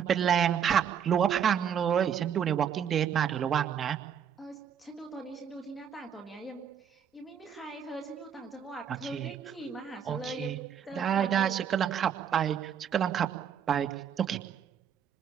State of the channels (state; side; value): quieter; left; 8.4 dB